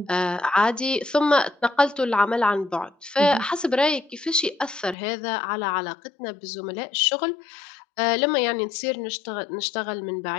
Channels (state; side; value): drops out; right; at 5.0 s